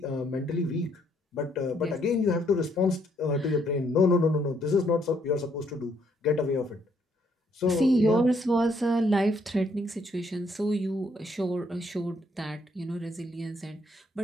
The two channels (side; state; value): both; normal; correlation 0.70